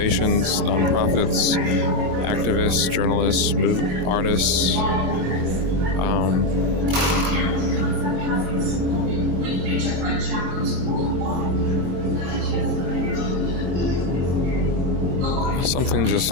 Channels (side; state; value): left; late; 22 ms